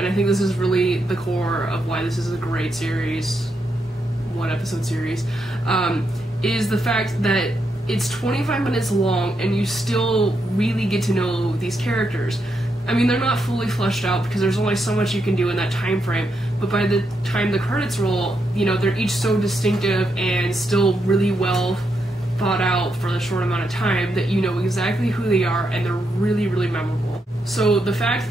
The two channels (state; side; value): normal; both; correlation 0.81